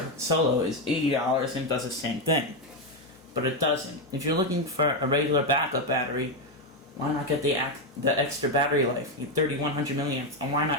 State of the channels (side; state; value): left; noise; hum, 30 dB below the sound